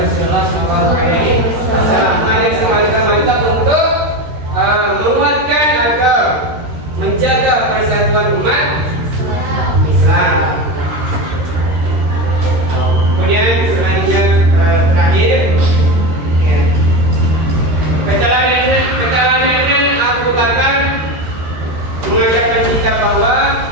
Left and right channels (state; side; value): late; left; 13 ms